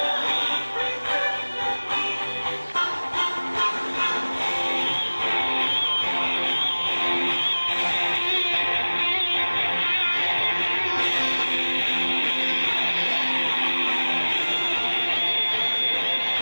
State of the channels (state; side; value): inverted; both; correlation -1.00